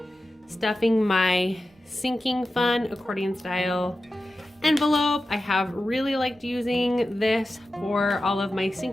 stuffing my sinking fund accordion style envelope. I have really liked using this for all of my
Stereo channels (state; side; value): normal; both; correlation 0.93